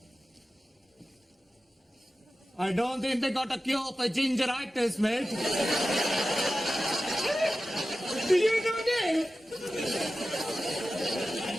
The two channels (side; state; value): both; normal; correlation 0.94